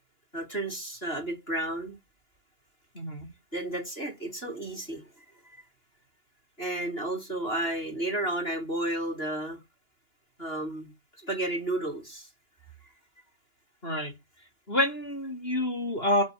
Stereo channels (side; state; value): right; late; 2.9 ms